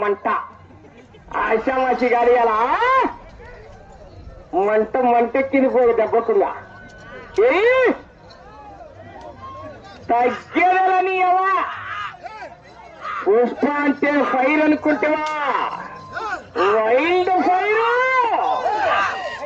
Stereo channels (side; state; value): both; identical; correlation 1.00